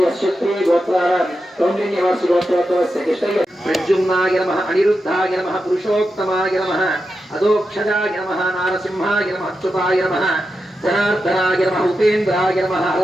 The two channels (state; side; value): normal; both; correlation 0.88